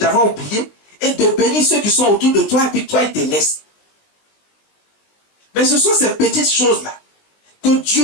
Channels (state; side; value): late; right; 20 ms